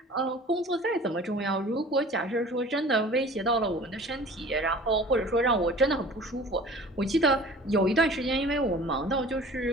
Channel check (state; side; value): normal; both; correlation 0.45